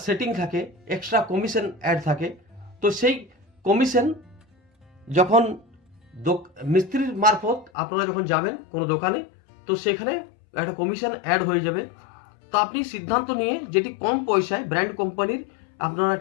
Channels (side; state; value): right; drops out; at 7.7 s